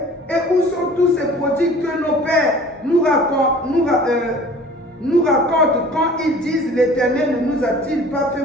Et où sont tous ces prodiges que nos pères nous racontent quand ils disent, l'Éternel ne nous a-t-il pas fait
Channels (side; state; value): both; normal; correlation 0.47